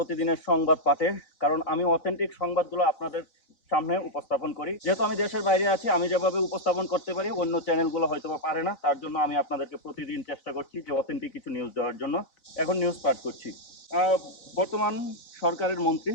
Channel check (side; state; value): right; late; 4.0 ms